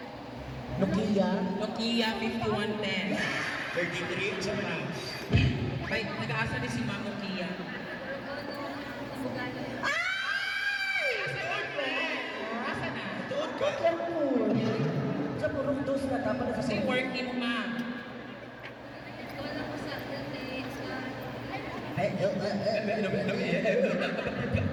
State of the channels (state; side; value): identical; both; correlation 1.00